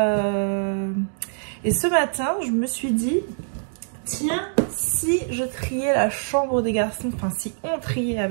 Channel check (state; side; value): silent; left; 63 dB below the other